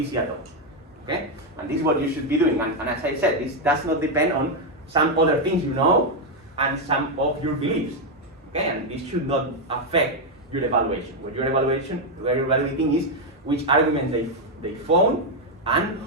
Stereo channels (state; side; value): normal; both; correlation 0.02